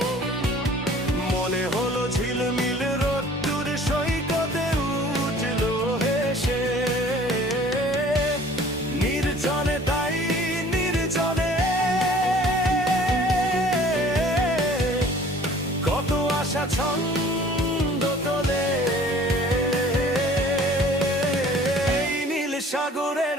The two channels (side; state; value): both; normal; correlation 0.51